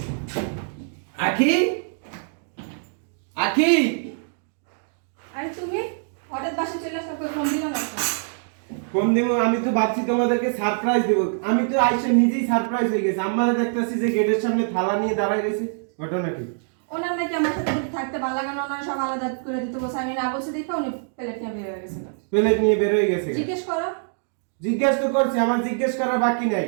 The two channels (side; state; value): left; silent; digital silence